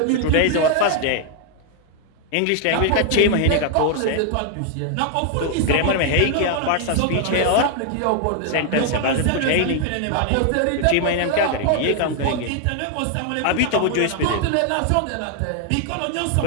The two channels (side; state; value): both; different; correlation 0.00